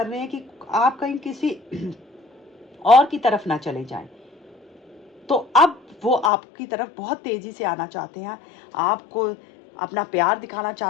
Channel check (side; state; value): right; drops out; at 6.3 s